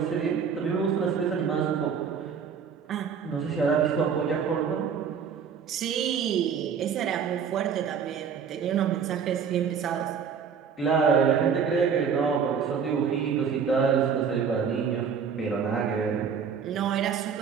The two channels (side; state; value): left; quieter; 6.7 dB